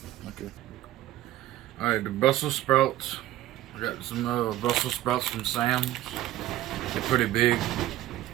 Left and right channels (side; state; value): left; quieter; 14.4 dB